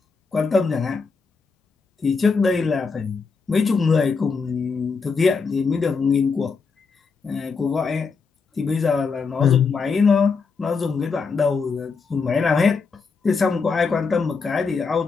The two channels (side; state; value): right; quieter; 4.9 dB